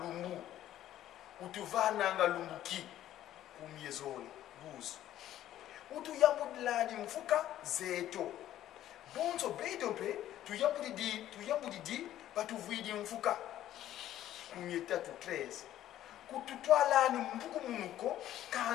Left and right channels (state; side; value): quieter; right; 12.6 dB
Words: utuvananga lumbuki kumyezoli 12. Utuyambudilani mfuka zeto bonzo bedope tuyambudidi batuvidi mfuka kumyetatu 13. Kututwalani mbuku munuko